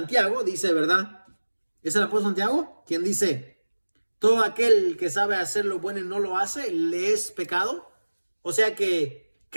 dice, ¿verdad? ¿Es el apóstol Santiago? Quien dice, todo aquel que sabe hacer lo bueno y no lo hace, le es pecado. O sea que,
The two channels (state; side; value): inverted; both; correlation -1.00